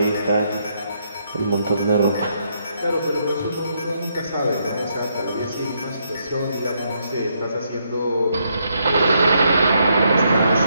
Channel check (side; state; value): both; inverted; correlation -0.76